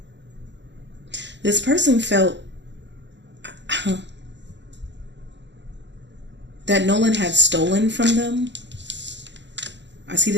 This person felt that Nolan had stolen from them. I see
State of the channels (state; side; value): late; left; 0.52 ms